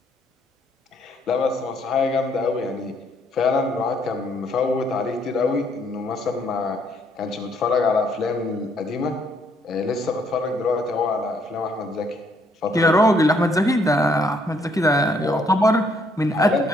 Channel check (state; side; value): normal; both; correlation 0.69